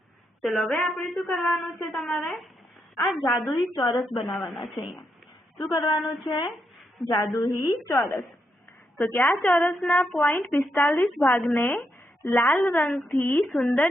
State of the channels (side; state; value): both; normal; correlation 0.82